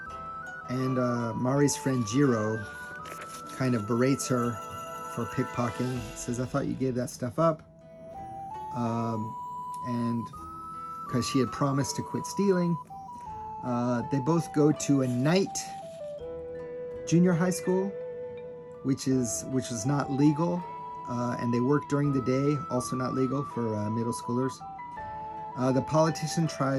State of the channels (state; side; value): identical; both; correlation 1.00